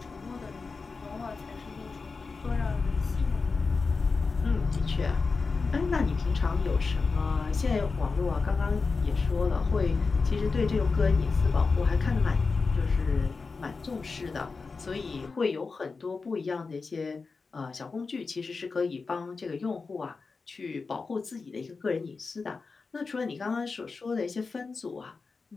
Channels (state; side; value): quieter; right; 4.4 dB